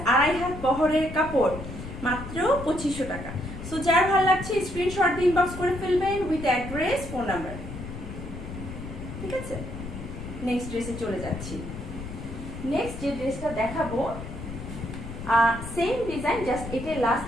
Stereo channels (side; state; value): left; noise; rumble, 10 dB below the sound